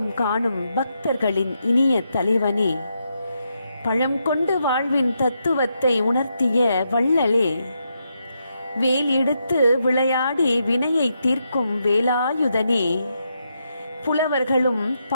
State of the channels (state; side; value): inverted; both; correlation -0.82